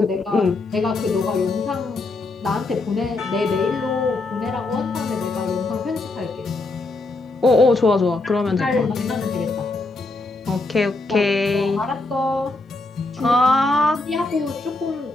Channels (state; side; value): quieter; right; 3.2 dB